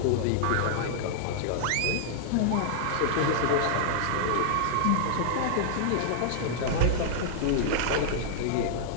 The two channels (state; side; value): different; both; correlation -0.01